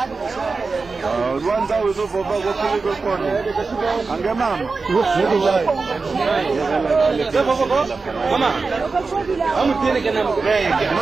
Rwanza uzofova kwa kone. Ange mama. Mama. Amu tiene que namu.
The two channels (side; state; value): left; quieter; 4.2 dB